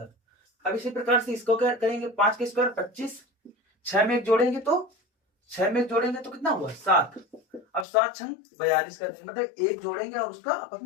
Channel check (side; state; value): right; drops out; at 7.9 s